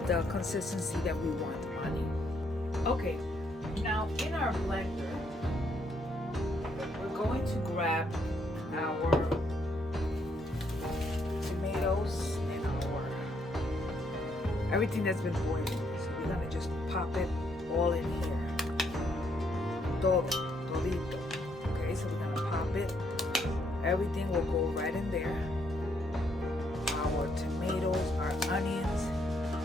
the consistency that we want on it. Okay, now in our blender, we're going to grab our tomatoes and everything that's been boiling. So we're going to just pop it all in here. Todito. Okay, so we're going to pop it. Everything will go right in there. Our tomatoes, our onions,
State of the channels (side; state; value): both; normal; correlation 0.73